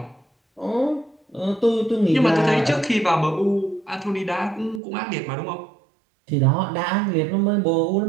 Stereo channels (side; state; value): left; drops out; at 4.8 s